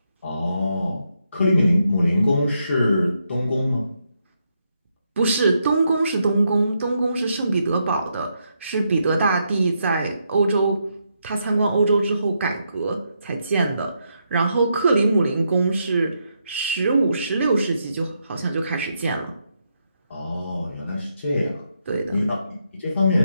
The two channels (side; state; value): both; inverted; correlation -0.80